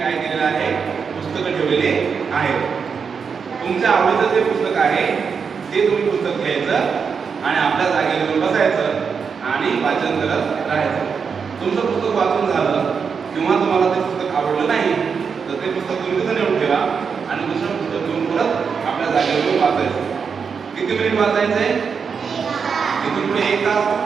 केलेलं आहे, पुस्तकं ठेवलेले आहेत. तुमच्या आवडीचं जे पुस्तक आहे ते तुम्ही पुस्तक घ्यायचं आणि आपल्या जागेवर येऊन बसायचं आणि वाचन करत राहायचं. तुमचं पुस्तक वाचून झालं किंवा तुम्हाला ते पुस्तक आवडलं नाही तर ते पुस्तक तुम्ही तिथं नेऊन ठेवा आणि दुसरं पुस्तक घेऊन परत आपल्या जागेवर येऊन वाचायचं. किती मिनिट वाचायचंय? इथून पुढे 1 तास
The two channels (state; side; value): quieter; left; 6.0 dB